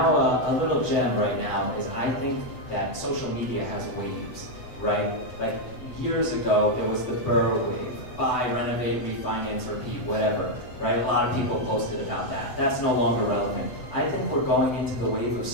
a little gem right now is I think that social media has waves, right? Like years ago, there was the Burr wave, buy, renovate, refinance, repeat, whatever, right? A lot of people posted about that. That's no longer relevant. I think we're going into the wave of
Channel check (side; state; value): right; late; 8.2 ms